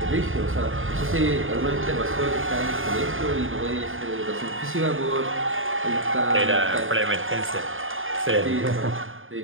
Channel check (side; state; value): left; late; 0.59 ms